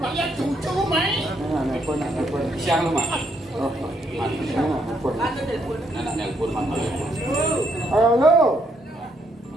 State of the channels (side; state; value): both; normal; correlation 0.73